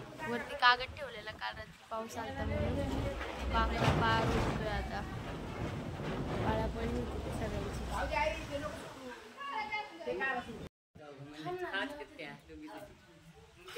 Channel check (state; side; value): identical; both; correlation 1.00